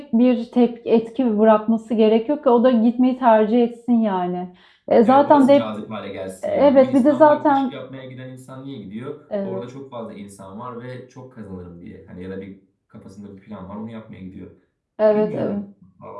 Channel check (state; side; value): identical; both; correlation 1.00